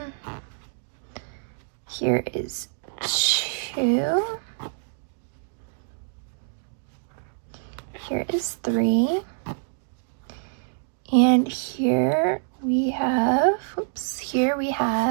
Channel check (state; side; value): silent; left; digital silence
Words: here is 2, here is 3, and here we have, here we